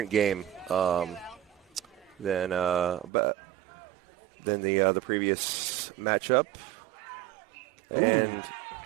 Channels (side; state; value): left; drops out; at 3.1 s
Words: game than the previous matchup. Ooh.